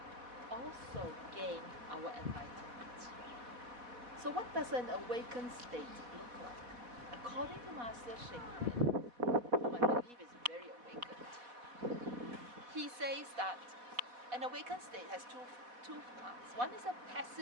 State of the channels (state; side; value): late; left; 4.1 ms